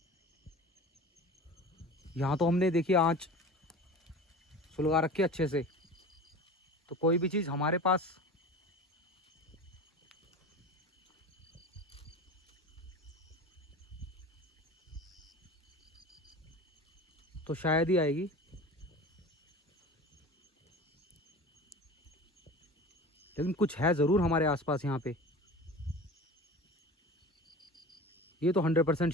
यहाँ तो हमने देखिए आँच सुलगा रखी है अच्छे से, तो कोई भी चीज़ हमारे पास तो शायद ही आएगी। लेकिन कुछ है ज़रूर हमारे आसपास यहाँ पे, ये तो 100%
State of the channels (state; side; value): normal; both; correlation 0.35